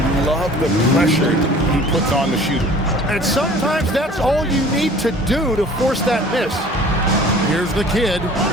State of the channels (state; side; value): normal; both; correlation 0.48